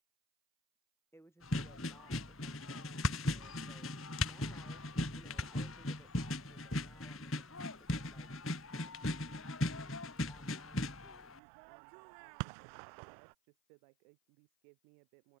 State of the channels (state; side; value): drops out; left; at 11.4 s